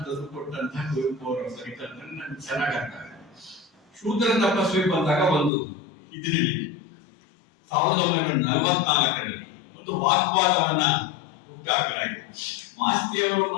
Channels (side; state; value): right; drops out; at 5.5 s